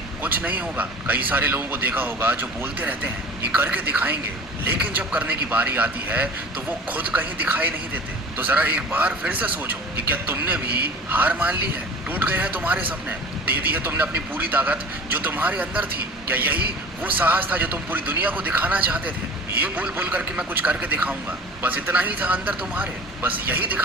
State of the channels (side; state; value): both; normal; correlation 0.40